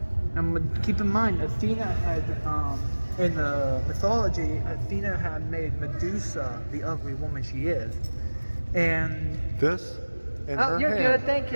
And keep in mind, Athena had, in the mythology, Athena had made Medusa the ugly woman she is. And... This in her you're hand. good, thank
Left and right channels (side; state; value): both; inverted; correlation -1.00